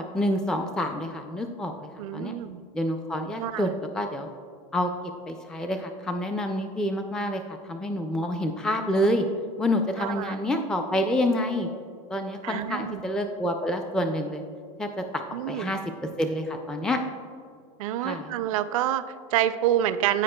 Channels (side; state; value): both; normal; correlation 0.47